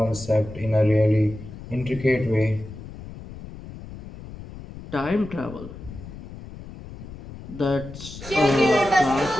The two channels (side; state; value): left; noise; rumble, 14 dB below the sound